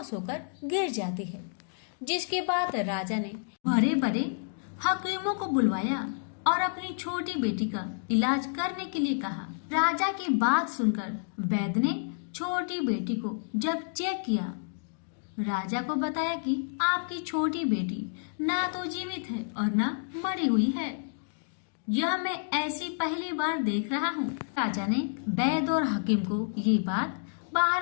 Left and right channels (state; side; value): silent; right; digital silence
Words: होकर गिर जाती है। जिसके बाद राजा ने बड़े बड़े हकीमों को बुलवाया और अपनी छोटी बेटी का इलाज करने के लिए कहा। राजा की बात सुनकर वैद्य ने छोटी बेटी को जब चेक किया, राजा को बताया कि आपकी छोटी बेटी ना तो जीवित है और ना मरी हुई है। यह मैं ऐसी पहली बार देख रहा हूँ। राजा ने वैद्य और हकीम को ये बात